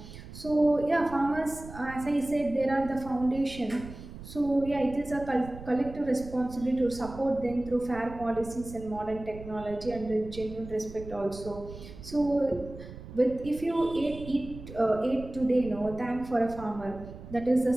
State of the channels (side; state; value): right; noise; rumble, 14 dB below the sound